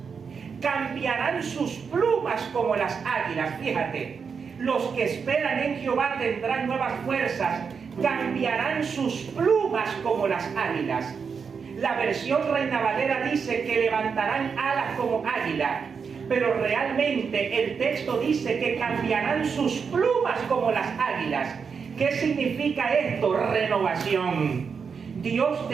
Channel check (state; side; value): quieter; left; 5.9 dB